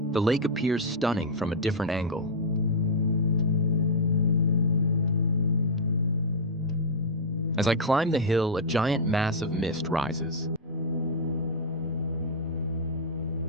the lake appears stunning from a different angle. As I climb the hill, a giant mass of mist rises.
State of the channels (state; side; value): normal; both; correlation -0.05